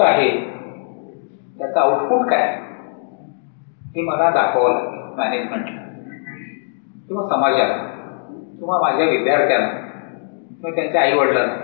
आहे त्याचं आउटपुट काय हे मला दाखवावं लागेल मॅनेजमेंटला किंवा समाजाला किंवा माझ्या विद्यार्थ्यांना किंवा त्यांच्या आईवडिलांना.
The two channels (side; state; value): right; silent; digital silence